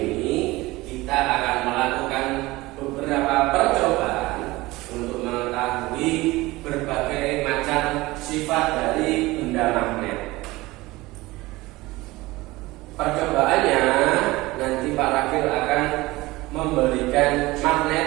kita akan melakukan beberapa percobaan untuk mengetahui berbagai macam sifat dari benda magnet. Percobaannya nanti Pak Rakil akan memberikan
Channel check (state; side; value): quieter; left; 20.1 dB